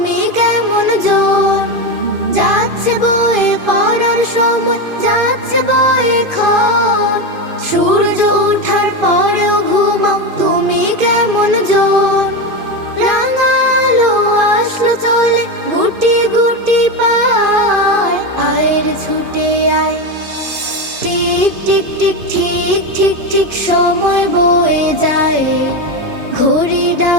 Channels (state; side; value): late; left; 2.5 ms